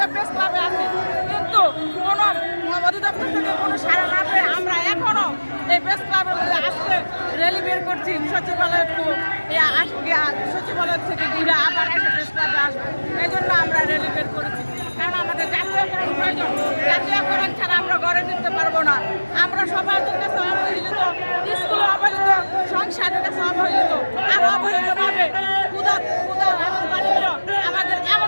প্রেস ক্লাবে আছি, কিন্তু কোনো অধিদপ্তর থেকে কোনো সাড়া না পেয়ে আমরা এখনো এই প্রেস ক্লাবের মধ্যে আজকে র্যালি বের করছি। সচিবালয় থেকে ঘিরে আবার একটা প্রেস ক্লাবে আসবো, এই জন্য আমরা র্যালি বের করেছি। কারণ আমাদের জাতীয়করণ প্রয়োজন। জাতীয়করণ ছাড়া আমরা গড়ে তুলতে পারবো না। আমরা সমাজের কাছে অবহেলিত, স্কুলে অবহেলিত, সংসারের কাছে অবহেলিত, আর অবহেলিতভাবে আমাদের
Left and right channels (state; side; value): inverted; both; correlation -1.00